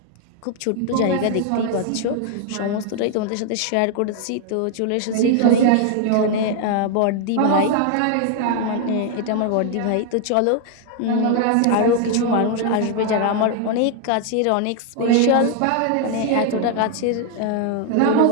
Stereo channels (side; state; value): both; different; correlation 0.00